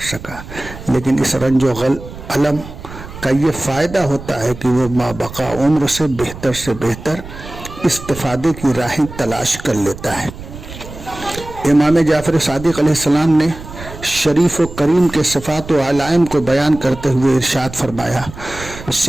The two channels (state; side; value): noise; right; rumble, 14 dB below the sound